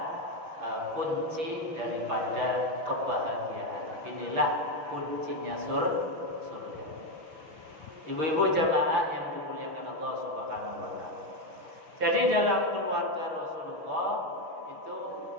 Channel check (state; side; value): late; left; 6.3 ms